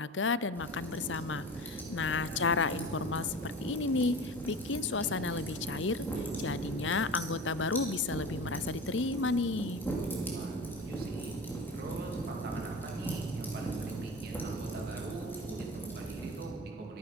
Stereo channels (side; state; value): both; normal; correlation 0.33